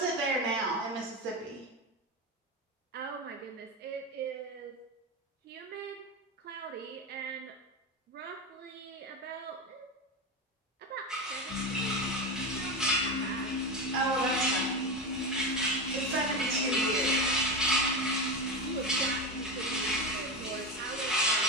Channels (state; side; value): normal; both; correlation 0.19